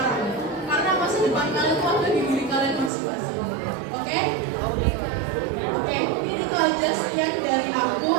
Karena masa depan kalian itu ada di diri kalian masing-masing. Oke? Oke, ini itu aja sekian dari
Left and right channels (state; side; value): drops out; left; at 2.9 s